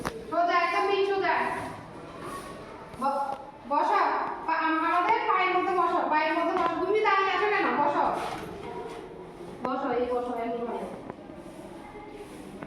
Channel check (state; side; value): identical; both; correlation 1.00